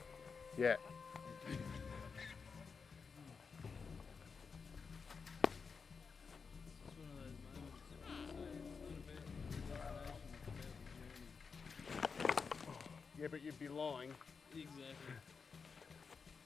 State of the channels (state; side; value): quieter; right; 5.3 dB